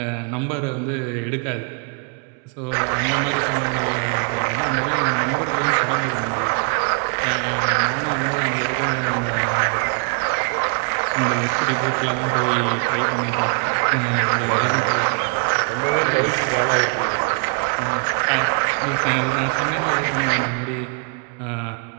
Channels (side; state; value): left; quieter; 38.7 dB